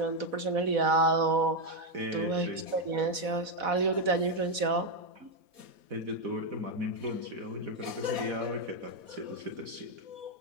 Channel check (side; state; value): left; late; 4.1 ms